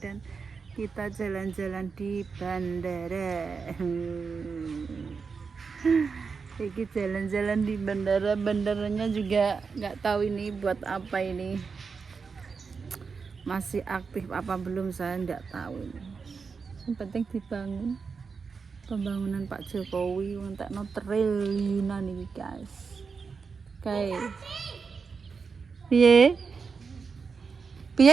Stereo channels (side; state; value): left; quieter; 5.3 dB